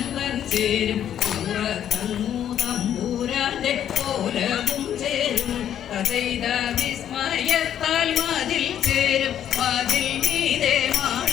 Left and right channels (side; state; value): right; quieter; 10.1 dB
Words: ചേരും. തമ്പൂരാന്റെ കോലവും ചേരും. കഥയിത വിസ്മയത്താൽ മതിൽ ചേരും. മതിൽ മീതെ